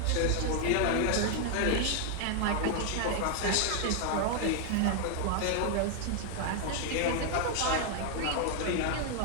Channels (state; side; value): different; both; correlation 0.00